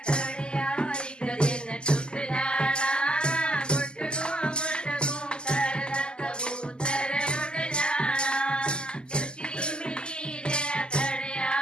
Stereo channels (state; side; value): late; right; 0.048 ms